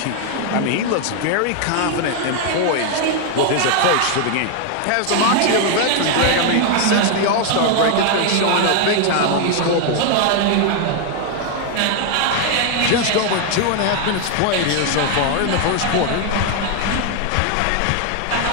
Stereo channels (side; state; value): both; different; correlation 0.00